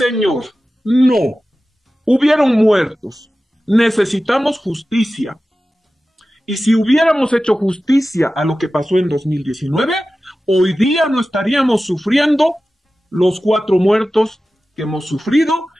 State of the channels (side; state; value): both; normal; correlation 0.95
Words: no. Hubieron muertos. Necesitamos justicia. Y si hubiéramos hecho justicia a lo que pasó en 2019, hoy día no estaríamos sufriendo los 4 muertos que hemos sufrido